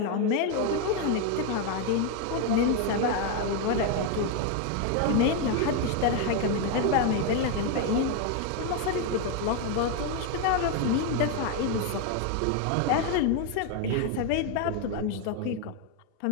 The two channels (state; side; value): different; both; correlation 0.01